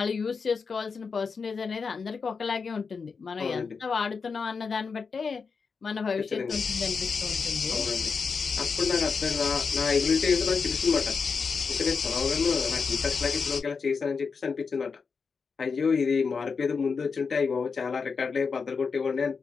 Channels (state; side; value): quieter; right; 5.2 dB